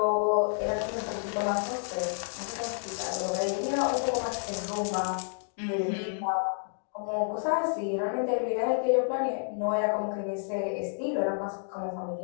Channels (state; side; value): silent; right; digital silence